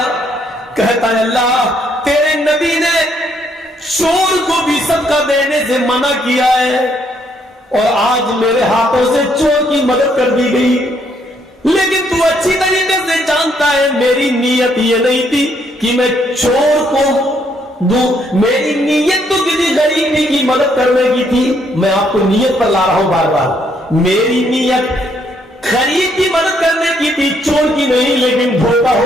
کہتا ہے اللہ تیرے نبی نے چور کو بھی صدقہ دینے سے منع کیا ہے اور آج میرے ہاتھوں سے چور کی مدد کر دی گئی، لیکن تو اچھی طریقے سے جانتا ہے میری نیت یہ نہیں تھی کہ میں چور کو دوں، میری نیت تو کسی غریب کی مدد کرنے کی تھی۔ میں آپ کو نیت پر لا رہا ہوں بار بار، میری نیت غریب کی مدد کرنے کی تھی، چور کی نہیں، لیکن دھوکہ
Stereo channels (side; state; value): both; normal; correlation 0.71